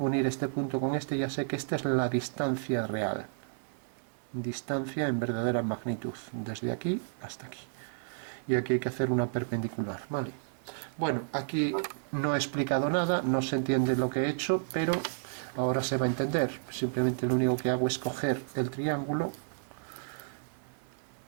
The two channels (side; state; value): left; silent; 57 dB below the other